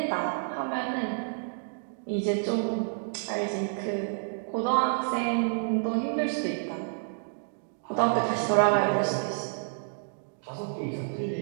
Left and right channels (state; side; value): silent; left; digital silence